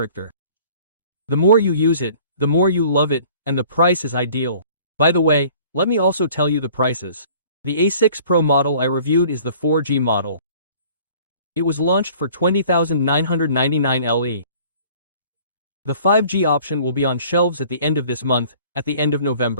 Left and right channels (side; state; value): both; inverted; correlation -0.52